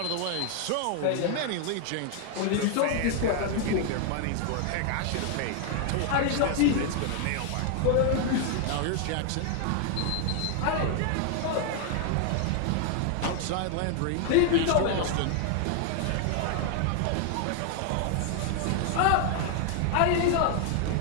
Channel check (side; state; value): both; different; correlation 0.00